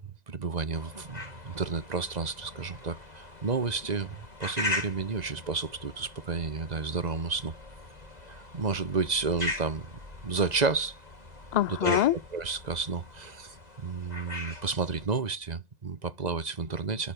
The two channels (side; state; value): left; late; 2.0 ms